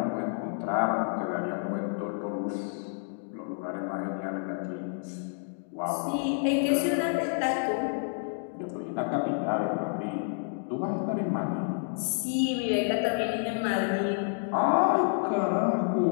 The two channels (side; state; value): right; silent; 58 dB below the other